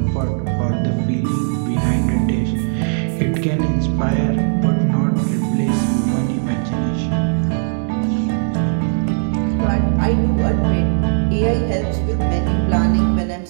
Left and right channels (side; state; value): left; silent; digital silence